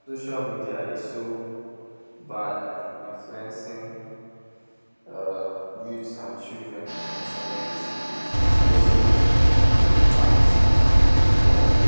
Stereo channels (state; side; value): inverted; both; correlation -1.00